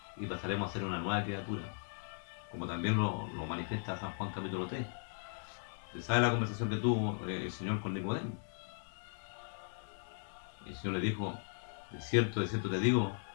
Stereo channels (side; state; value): right; silent; digital silence